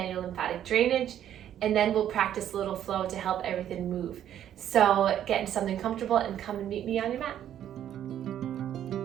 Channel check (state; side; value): quieter; left; 10.7 dB